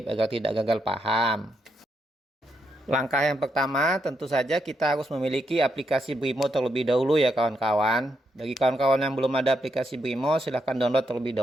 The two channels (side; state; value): both; normal; correlation 0.80